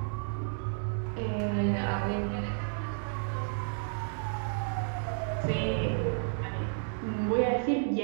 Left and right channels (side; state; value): left; silent; digital silence